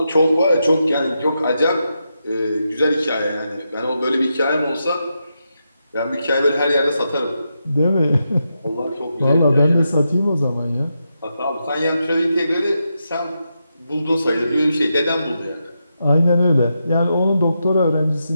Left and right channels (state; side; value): inverted; both; correlation -0.85